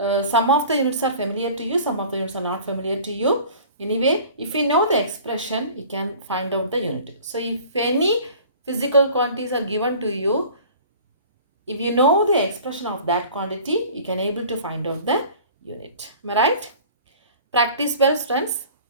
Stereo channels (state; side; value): inverted; both; correlation -0.45